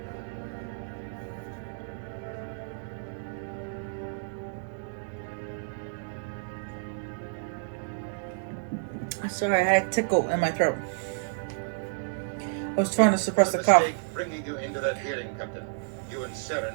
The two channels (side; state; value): left; silent; digital silence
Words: Sorry, I had a tickle in my throat. I was trying to suppress the cough. Mistake bringing you into that hearing, Captain. You and